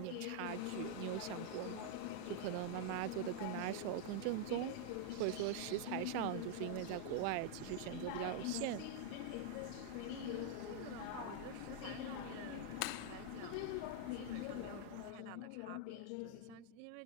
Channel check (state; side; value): different; both; correlation 0.00